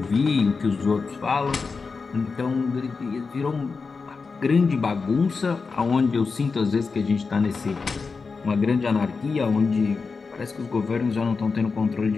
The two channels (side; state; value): right; quieter; 4.7 dB